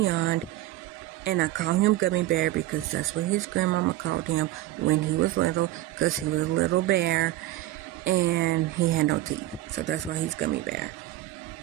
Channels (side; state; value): left; quieter; 15.3 dB